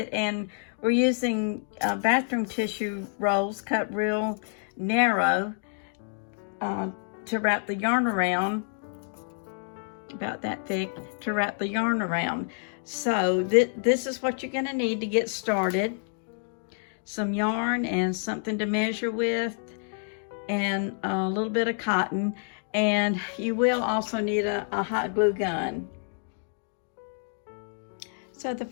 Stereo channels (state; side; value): silent; right; 59 dB below the other